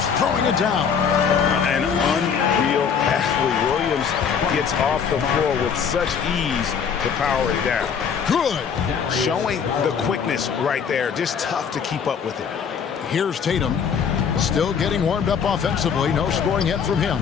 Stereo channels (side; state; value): right; quieter; 6.9 dB